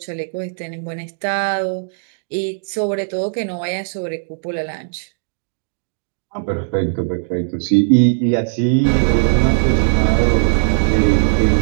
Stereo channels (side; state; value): left; silent; digital silence